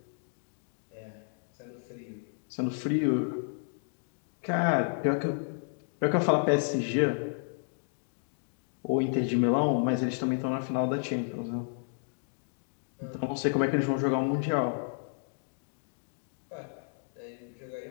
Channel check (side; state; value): right; silent; digital silence